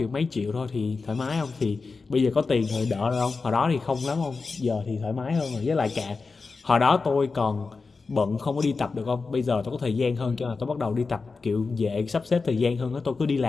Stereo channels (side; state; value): right; quieter; 4.3 dB